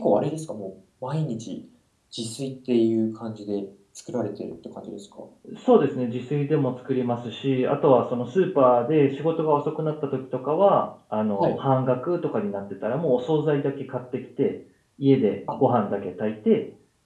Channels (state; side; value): identical; both; correlation 1.00